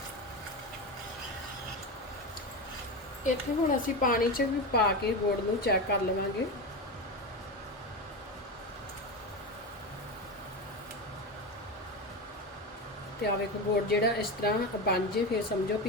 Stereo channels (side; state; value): both; normal; correlation 0.19